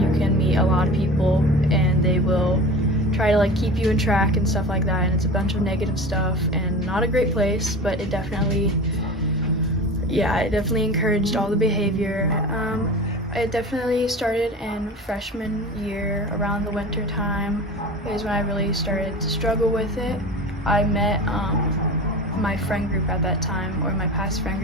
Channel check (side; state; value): both; normal; correlation 0.34